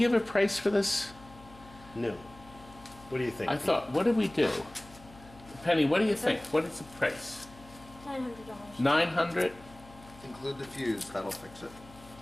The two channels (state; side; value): noise; left; hum, 21 dB below the sound